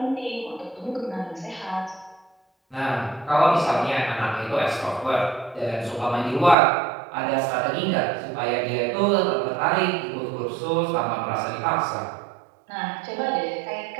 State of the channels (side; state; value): left; drops out; at 6.6 s